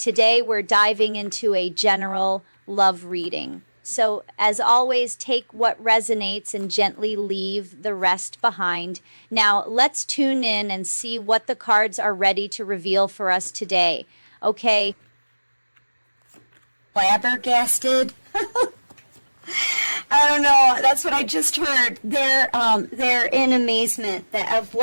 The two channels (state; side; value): inverted; both; correlation -1.00